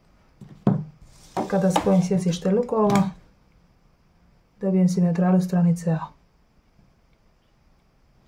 Kada spojim sjecište lukova, dobijem simetralu stranice A.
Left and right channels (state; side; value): identical; both; correlation 1.00